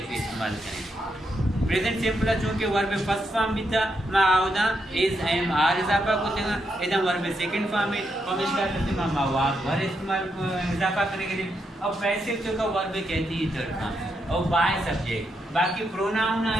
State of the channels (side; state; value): both; normal; correlation 0.81